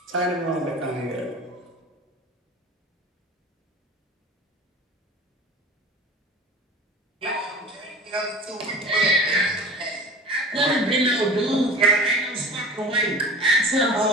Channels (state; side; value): normal; both; correlation 0.38